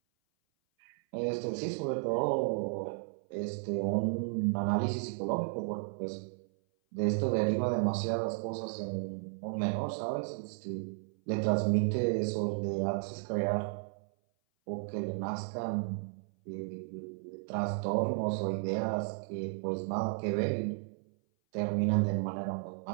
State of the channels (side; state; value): left; silent; 55 dB below the other